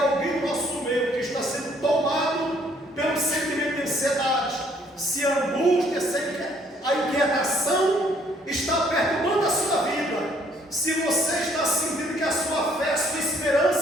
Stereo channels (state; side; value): normal; both; correlation 0.64